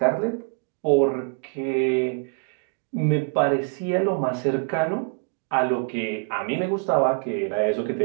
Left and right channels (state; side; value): quieter; left; 39.1 dB